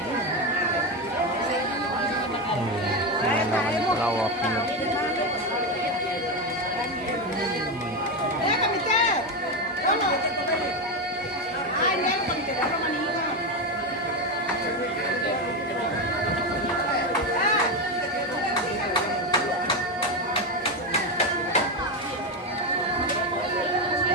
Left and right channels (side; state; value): both; normal; correlation 0.13